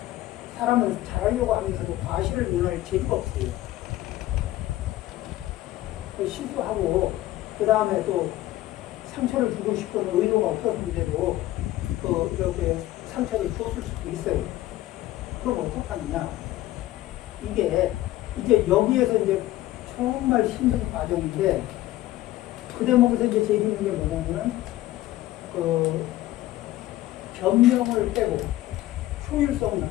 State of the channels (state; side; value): quieter; right; 15.7 dB